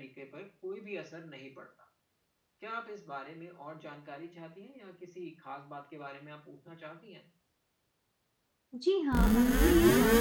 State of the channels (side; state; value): both; identical; correlation 1.00